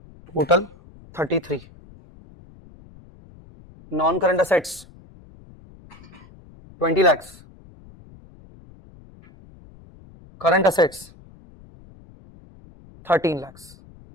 Total 33. Non-current assets 20 lakhs. Current assets 13 lakhs.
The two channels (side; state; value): left; noise; rumble, 23 dB below the sound